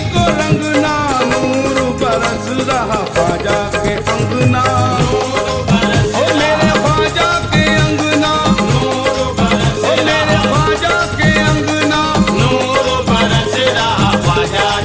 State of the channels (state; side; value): identical; both; correlation 1.00